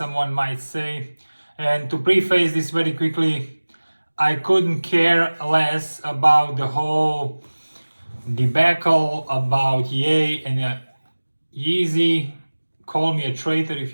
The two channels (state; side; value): inverted; both; correlation -1.00